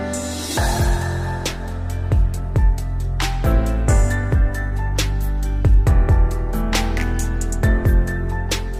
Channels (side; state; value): both; identical; correlation 1.00